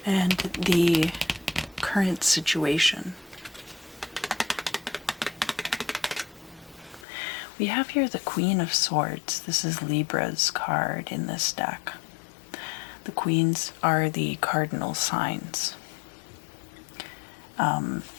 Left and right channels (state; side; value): drops out; right; at 7.1 s